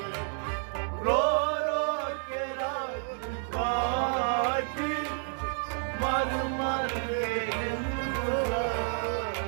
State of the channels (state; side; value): silent; left; 55 dB below the other